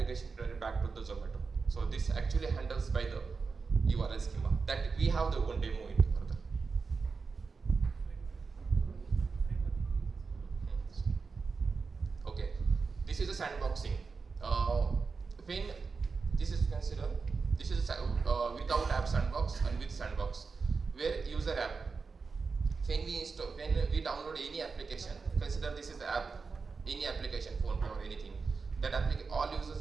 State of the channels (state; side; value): quieter; left; 4.7 dB